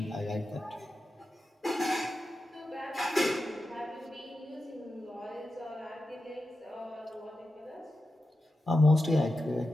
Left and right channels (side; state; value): both; normal; correlation 0.91